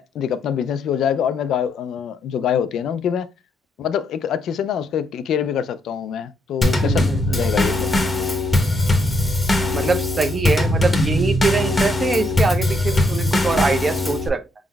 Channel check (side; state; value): both; normal; correlation 0.75